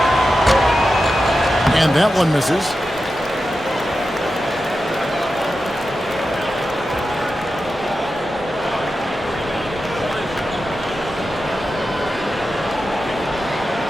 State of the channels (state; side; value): normal; both; correlation 0.91